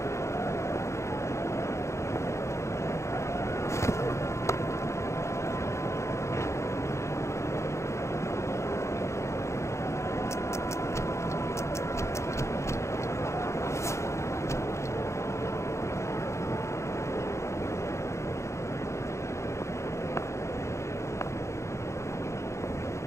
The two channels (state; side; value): late; right; 0.14 ms